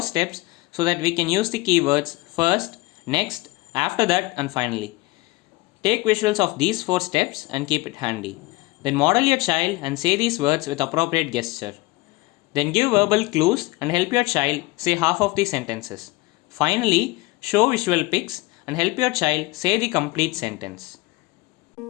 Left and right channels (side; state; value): right; quieter; 22.2 dB